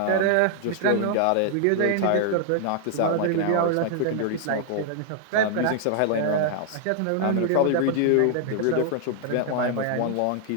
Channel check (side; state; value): both; different; correlation 0.00